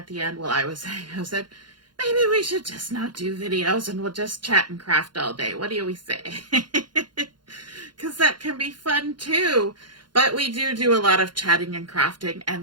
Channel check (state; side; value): late; left; 0.71 ms